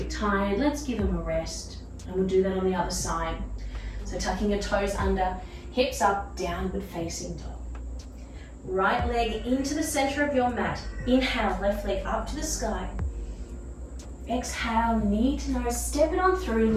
tired, let's give them a rest. And we'll do that on the other side. So tucking your toes under, hips up, downward facing dog. Right leg into the center of your mat. Inhale, left leg up to the sky. Exhale, knee to nose, step it on through,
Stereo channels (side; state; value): both; identical; correlation 1.00